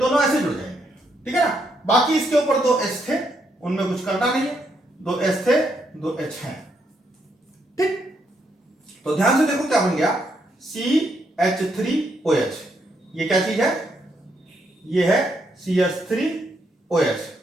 ऐसे जुड़ जाएंगे। ठीक है ना, बाकी इसके ऊपर दो H थे, उनमें कुछ करना नहीं है, दो H थे, दो H हैं। ठीक, तो ध्यान से देखो क्या बन गया, CH3OH। ये क्या चीज है, ये है CH3OH।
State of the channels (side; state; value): both; normal; correlation 0.76